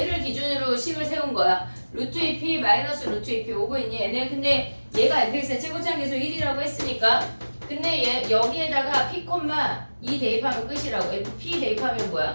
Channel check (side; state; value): both; inverted; correlation -1.00